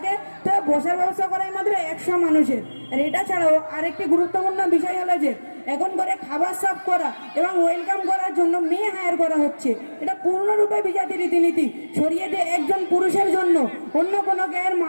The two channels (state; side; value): inverted; both; correlation -1.00